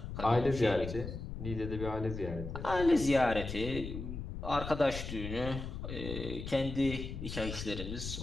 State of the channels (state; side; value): noise; left; rumble, 7 dB below the sound